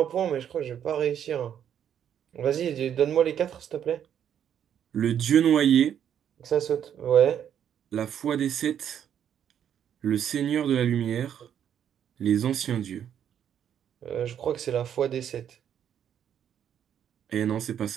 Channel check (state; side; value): quieter; left; 9.3 dB